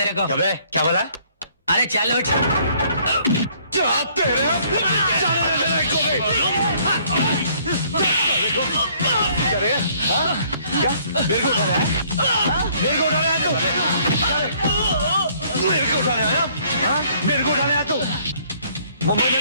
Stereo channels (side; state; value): both; inverted; correlation -0.62